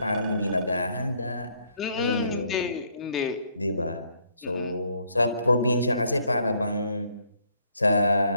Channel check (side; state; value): both; inverted; correlation -0.67